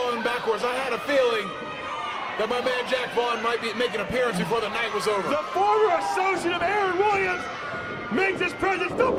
him backwards. I had a feeling that my man Jack Vaughn might be making an appearance before the night was over. The former associate of Aaron Williams makes his presence the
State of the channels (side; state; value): both; identical; correlation 1.00